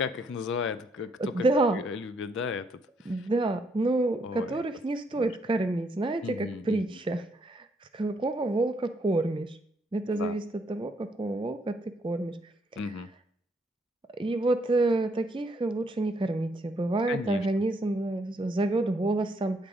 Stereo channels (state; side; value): normal; both; correlation 0.72